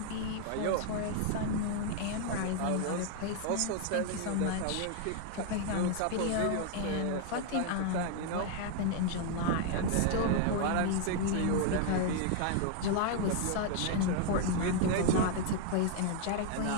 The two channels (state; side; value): different; both; correlation 0.00